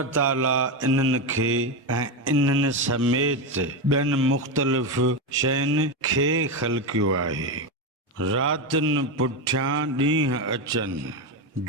ताला इन्हनि खे ऐं इन्हनि समेत ॿियनि मुख़्तलिफ़ शयुनि खे ख़ल्क़ियो आहे। रातिनि पुठियां ॾींहं अचनि,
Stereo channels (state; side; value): normal; both; correlation 0.13